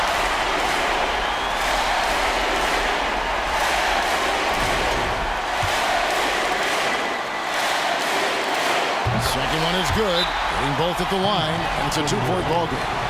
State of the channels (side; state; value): both; identical; correlation 1.00